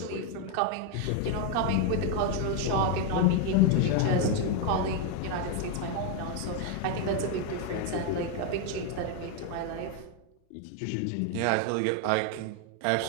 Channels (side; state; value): both; different; correlation 0.01